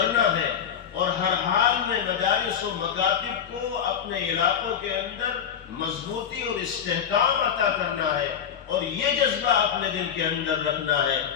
ہے اور ہر حال میں مدارس و مکاتب کو اپنے علاقوں کے اندر مضبوطی اور استحکام عطا کرنا ہے اور یہ جذبہ اپنے دل کے اندر رکھنا ہے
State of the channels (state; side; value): quieter; right; 8.3 dB